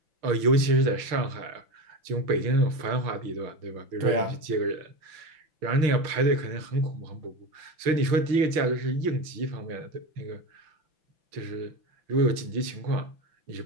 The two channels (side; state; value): left; late; 5.9 ms